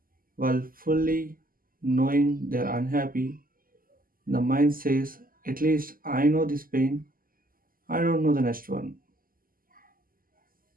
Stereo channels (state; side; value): late; left; 0.42 ms